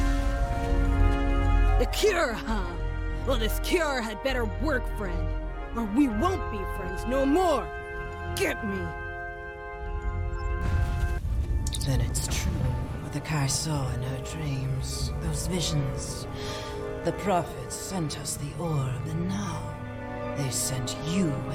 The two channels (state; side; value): identical; both; correlation 1.00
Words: The cure, huh? Well, this cure had better work, friend. Or we won't be friends no more. Get me. Then it's true what the Kai saw in her dreams. Those visions. The prophets sent us the orb, and now they sent you